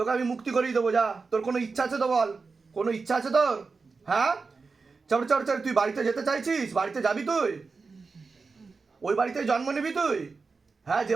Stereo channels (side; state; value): left; quieter; 4.5 dB